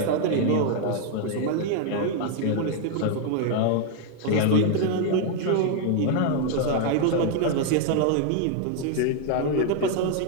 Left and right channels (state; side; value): different; both; correlation 0.00